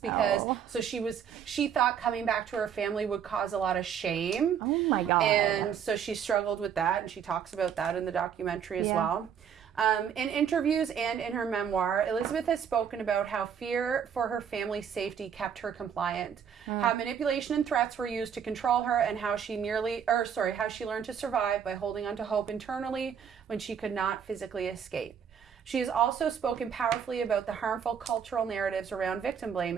because so she thought coming back to her family would cause a lot of shame. Oh my God. And so she struggled with that, and she talks about that in the documentary as well. In interviews and in her memoir, Elizabeth has spoken about how fear for her family's safety kept her compliant, how manipulation and threats were used to control her, and how she how she learned to survive by holding on to hope internally when she could not physically escape. She has also spoken powerfully about the harmful cultural narratives around victim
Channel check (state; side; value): quieter; left; 7.9 dB